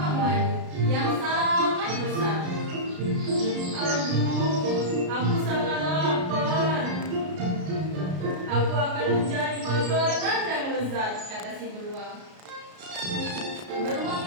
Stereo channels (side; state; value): left; late; 33 ms